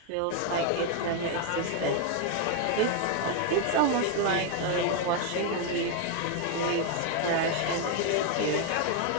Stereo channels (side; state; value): both; different; correlation 0.01